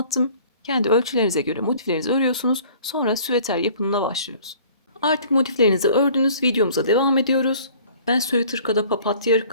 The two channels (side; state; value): both; inverted; correlation -0.51